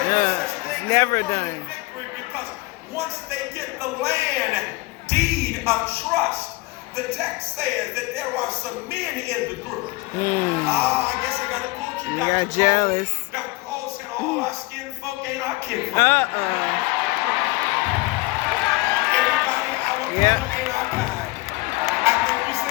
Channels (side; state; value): right; quieter; 22.8 dB